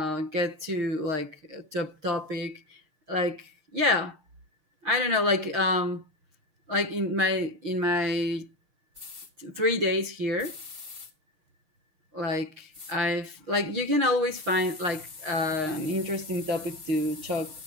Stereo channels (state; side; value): late; left; 6.4 ms